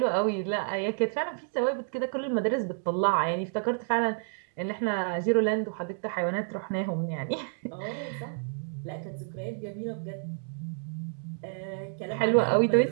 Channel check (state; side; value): silent; left; 58 dB below the other